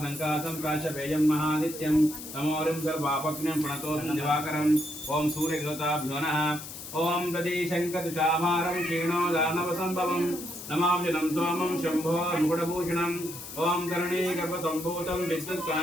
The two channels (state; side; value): noise; left; hiss, 11 dB below the sound